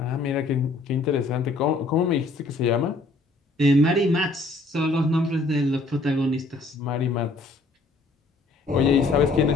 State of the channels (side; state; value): right; quieter; 3.2 dB